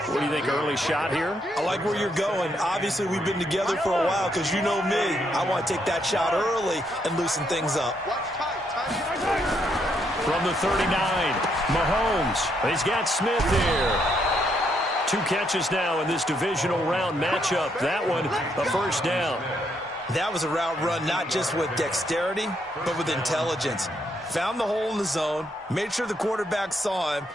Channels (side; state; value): both; normal; correlation 0.75